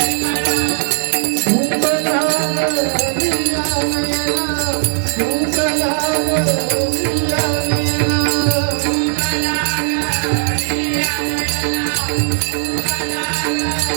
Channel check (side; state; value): left; silent; 68 dB below the other